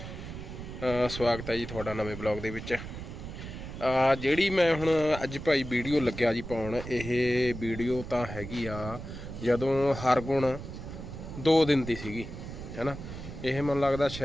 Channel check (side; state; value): right; noise; rumble, 10 dB below the sound